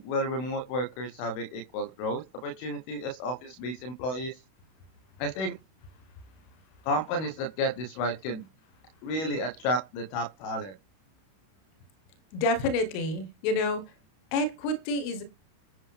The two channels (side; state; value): right; late; 32 ms